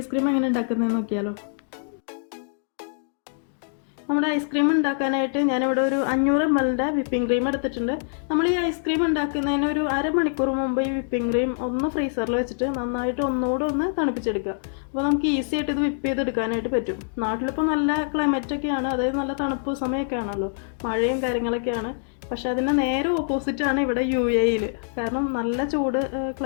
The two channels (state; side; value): silent; right; digital silence